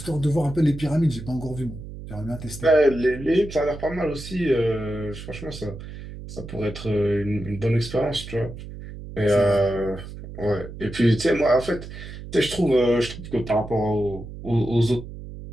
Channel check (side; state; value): right; noise; hum, 12 dB below the sound